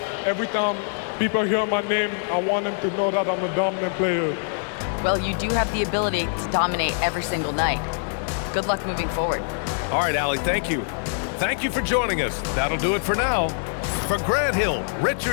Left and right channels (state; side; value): silent; right; digital silence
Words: every time people hear my name, I want them to know that I'm a dominant player. Well, you do have the ability to dominate every single night. Good luck moving forward. All right, Allie, thank you. Thank you for joining us. That'll do it for now. For Grant Hill,